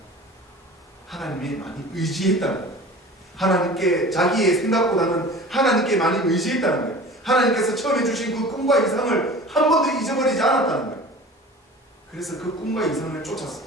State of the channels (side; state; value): both; normal; correlation 0.40